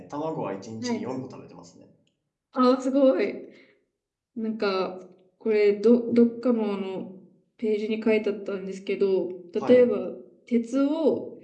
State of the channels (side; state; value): both; identical; correlation 1.00